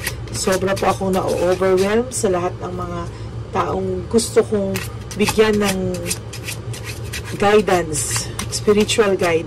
Sobra po akong na-overwhelm sa lahat ng mga taong gusto kong bigyan ng guidance, spiritual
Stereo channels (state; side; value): identical; both; correlation 1.00